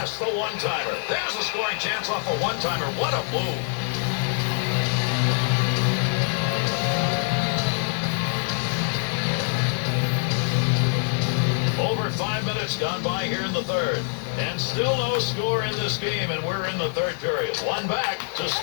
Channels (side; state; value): right; silent; 58 dB below the other